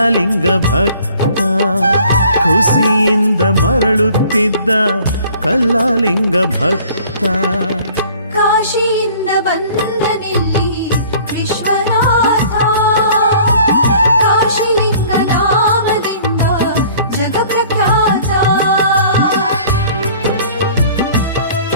ಭಕ್ತ ಖುಷಿಯಿಂದ ಮರಳುತ್ತಿದ್ದ ಕಲ್ಲಾಲಿಂಗ ಭಕ್ತ ಕಾಶಿಯಿಂದ ಬಂದನಿಲ್ಲಿ ವಿಶ್ವನಾಥ ಕಾಶಿಲಿಂಗ ನಾಮದಿಂದ ಜಗಪ್ರಖ್ಯಾತ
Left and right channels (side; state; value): both; inverted; correlation -0.52